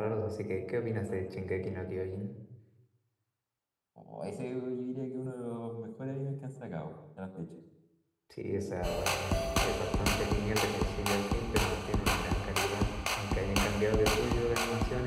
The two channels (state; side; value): identical; both; correlation 1.00